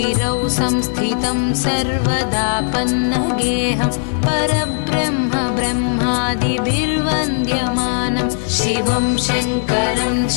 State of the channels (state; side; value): silent; right; 59 dB below the other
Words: संस्थितं सर्वदापन्नगेहं परब्रह्म ब्रह्मादिभिर्वन्द्यमानं शिवं शङ्करं